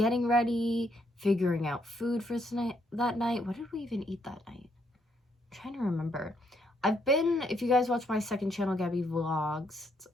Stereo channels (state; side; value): normal; both; correlation 0.73